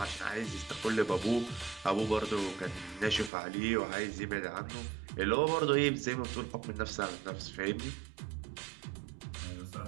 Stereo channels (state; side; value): drops out; left; at 3.3 s